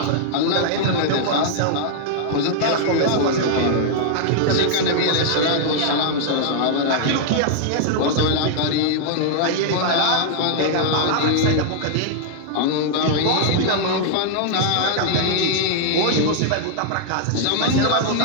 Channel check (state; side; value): different; both; correlation -0.01